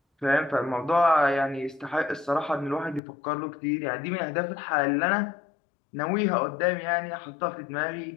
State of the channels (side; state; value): right; drops out; at 3.0 s